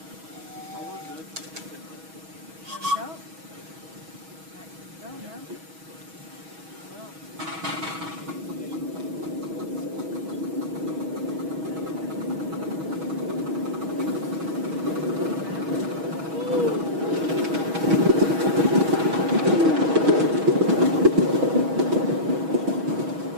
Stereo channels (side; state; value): left; late; 6.2 ms